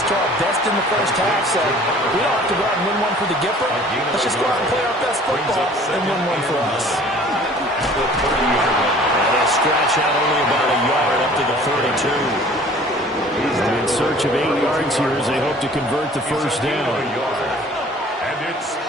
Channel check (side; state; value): both; normal; correlation 0.50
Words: to our best in the first half, so we don't have to go out and win one for the Gipper. Let's just go out and play our best football and win one for us. And they'll scratch out only about a yard up to the 32. In search of 8 yards here as they hope to convert the first down.